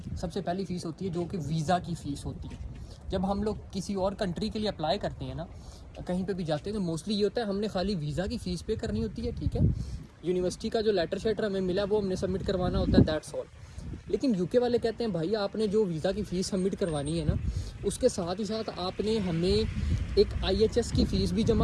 सबसे पहली फ़ीस होती है जो कि वीज़ा की फ़ीस होती है। जब हम लोग किसी और कंट्री के लिए अप्लाई करते हैं ना, कहीं पे भी जाते हैं तो मोस्टली ये होता है हमने खाली वीज़ा की फ़ीस पे करनी होती है, ठीक है। यूनिवर्सिटी का जो लेटर शेटर हमें मिला वो हमने सबमिट करवाना होता है, दैट्स ऑल। लेकिन यूके वाले कहते हैं भाई आपने जो वीज़ा की फ़ीस सबमिट करवानी है ना, उसके साथ ही साथ आपने हमें एक IHS की फ़ीस भी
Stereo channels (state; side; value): identical; both; correlation 1.00